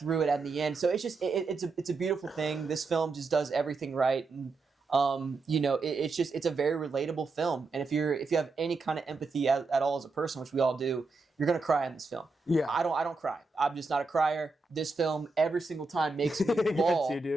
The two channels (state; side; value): quieter; left; 3.9 dB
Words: it at the end. So it's just it's a beautiful thing. This film just does everything right. And it's a very relatable film. And if you have any kind of empathy at all as a person, which we all do, you're gonna cry in this film. Yeah. I don't cry. I'm just not a crier. This film every single time makes me bawl. It gets you,